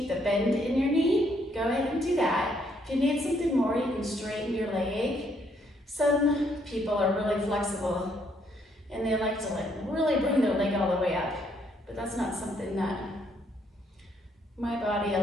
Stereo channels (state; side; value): normal; both; correlation 0.71